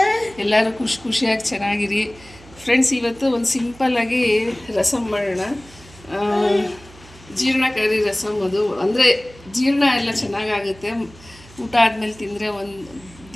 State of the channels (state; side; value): noise; right; hum, 23 dB below the sound